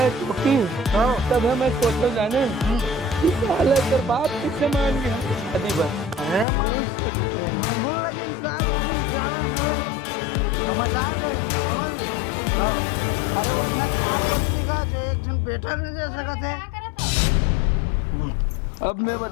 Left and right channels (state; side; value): drops out; right; at 6.5 s